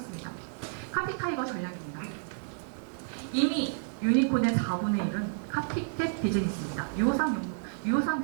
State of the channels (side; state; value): left; silent; digital silence